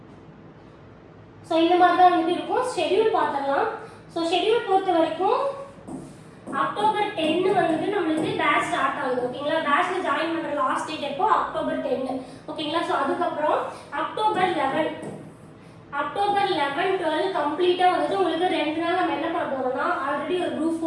ஸோ இந்த மாதிரி தான் வந்துட்டு இருக்கும். ஷெட்யூல் பார்த்துடலாம். ஸோ ஷெட்யூல் பொறுத்த வரைக்கும் அக்டோபர் 10 வந்துட்டு நம்மளுக்கு பேட்ச் ஸ்டார்ட் ஆகுது. ஓகேங்களா? பேட்ச்ல ஜாயின் பண்ற லாஸ்ட் டேட் எப்போ? அக்டோபர் 10. ஓகேங்களா? ஸோ அதுக்கப்புறம் அக்டோபர் 11 12 கம்ப்ளீட்டா வந்துட்டு உங்களுக்கு 2 நாள் நம்ம என்ன பண்ண போறோம்னா ஆல்ரெடி ஒரு குரூப்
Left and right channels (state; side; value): identical; both; correlation 1.00